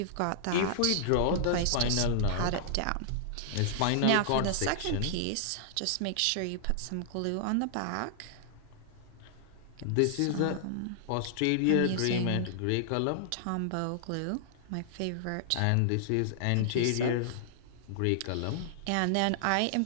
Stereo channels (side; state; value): both; different; correlation -0.01